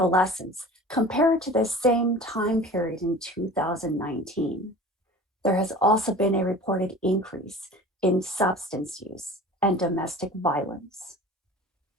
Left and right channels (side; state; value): both; normal; correlation 0.40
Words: compared to the same time period in 2019. There has also been a reported increase in substance use and domestic violence.